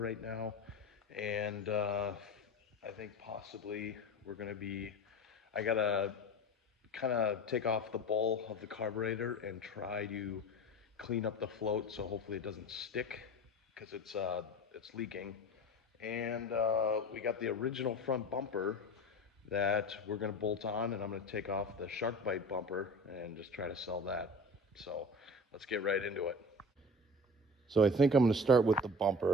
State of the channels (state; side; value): normal; both; correlation 0.34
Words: now, and I think possibly we're going to be. I got to kind of take off the bowl of the carburetor and try to clean up the float so hopefully it doesn't stick because it's leaking. And we got the original front bumper that we're going to bolt on, and I'm going to take off the shark bite bumper and just try to sell that. So let's get right into it. So I think I'm going to start with the